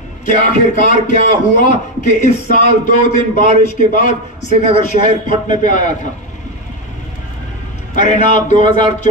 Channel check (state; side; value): normal; both; correlation 0.10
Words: कि आखिरकार क्या हुआ कि इस साल 2 दिन बारिश के बाद श्रीनगर शहर फटने पे आया था। अरे ना,